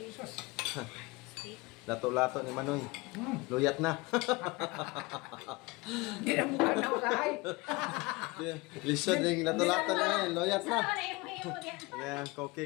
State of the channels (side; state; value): right; quieter; 24.1 dB